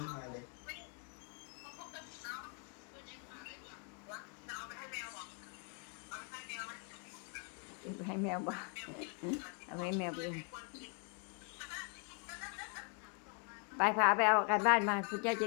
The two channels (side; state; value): right; quieter; 37.1 dB